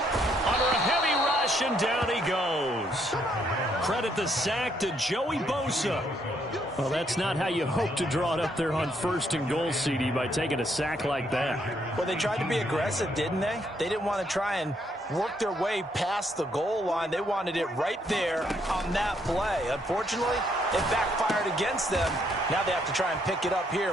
under a heavy rush, and down he goes. Credit the sack to Joey Bosa. Well, that's not how you hope to draw it up there on 1st and goal, CD, by taking a sack like that. Well, they tried to be aggressive, didn't they? They didn't want to try and work their way past the goal line. They wanted it right there on that play. Unfortunately, it backfired against them. Now they have to try and pick it up here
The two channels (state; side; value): normal; both; correlation 0.72